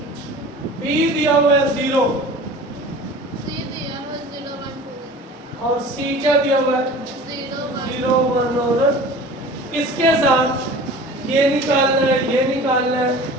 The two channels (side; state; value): both; normal; correlation 0.40